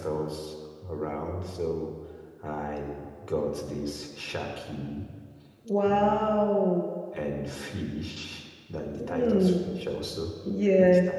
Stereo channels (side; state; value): both; identical; correlation 1.00